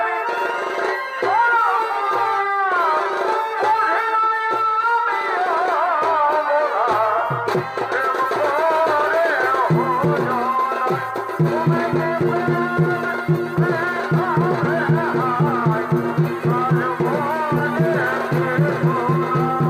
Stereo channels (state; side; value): identical; both; correlation 1.00